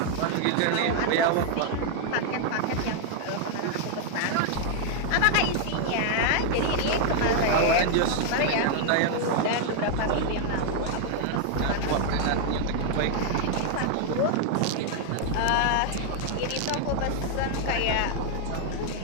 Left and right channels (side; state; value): both; different; correlation 0.00